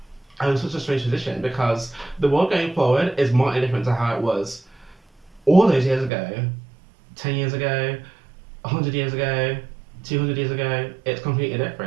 are in such a strange position because the world going forward is more different to how it was all those years ago, 10 years ago, 100 years ago, 200 years ago. It's completely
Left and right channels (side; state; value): left; drops out; at 6.1 s